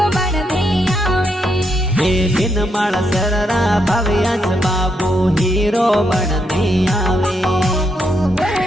बन में आवे ए बिन माळ सररा भव्याच बाबू हीरो बनने आवे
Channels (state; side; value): normal; both; correlation 0.79